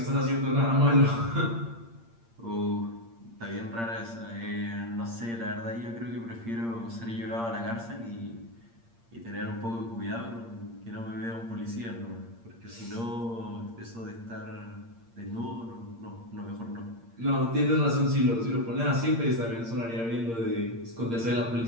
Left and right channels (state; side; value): late; left; 8.7 ms